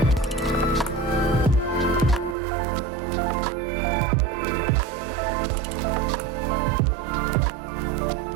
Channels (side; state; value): left; drops out; at 2.4 s